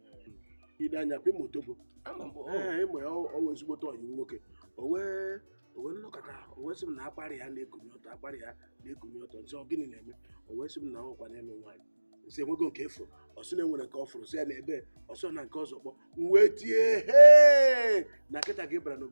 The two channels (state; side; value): inverted; both; correlation -1.00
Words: ide anya pe Otobo ịmụ ya ọwa ezigbote ọyị nwoke o wee nnọkọta o wee sị m na akparị ya na-ekunye ọtọ nsị ọ gịnị na-eme o wee sị m na ọkwa n'elu nwaanyị nsị enwego nke efuru ọsị na enwere nke ọ fụrụ sị ya na ebe ọsọ na nke ọzọ kpọ m wee tie na nkịta gị bara